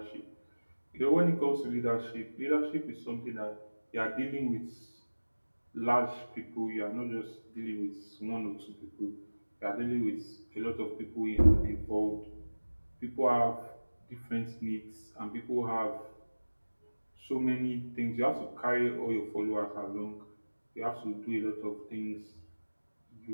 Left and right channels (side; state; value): both; inverted; correlation -1.00